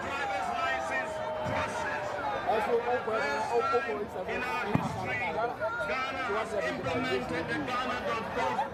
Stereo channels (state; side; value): identical; both; correlation 1.00